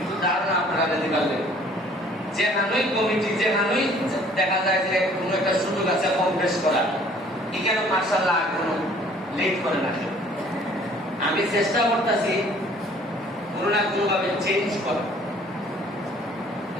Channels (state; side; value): normal; both; correlation 0.55